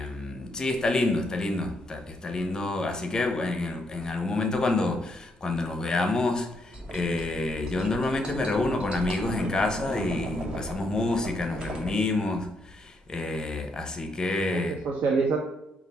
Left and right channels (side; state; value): both; normal; correlation 0.76